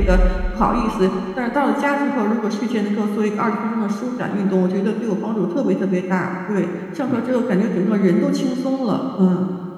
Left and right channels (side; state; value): both; identical; correlation 1.00